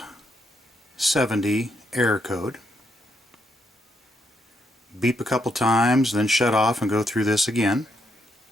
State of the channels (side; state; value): both; normal; correlation 0.77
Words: error code. Beep a couple times, then shut off and go through this again.